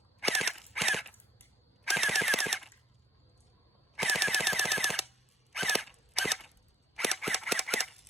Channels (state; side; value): normal; both; correlation 0.53